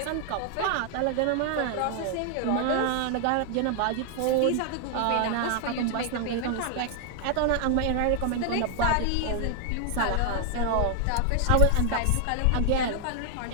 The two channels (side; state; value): both; different; correlation 0.00